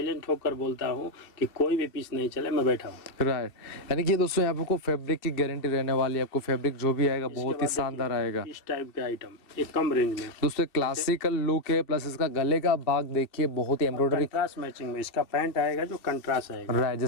होकर बोलता हूँ कि कोई भी पीस नहीं चले, मैं बैठा हूँ। राइट, यानी कि दोस्तों यहाँ आपको फैब्रिक की गारंटी रहने वाली है। आपको फैब्रिक जो भी आएगा बहुत ही शानदार आएगा। इस टाइप के आइटम ये कम रेंज में दोस्तों क्लासिकल लुक है, प्लस इसका गले का भाग देखिए बहुत ही एम्ब्रॉयडरी कंट्रास्ट मैचिंग में। इसका पैंट आएगा जो कंट्रास्ट आएगा। राइट,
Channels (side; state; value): right; late; 2.6 ms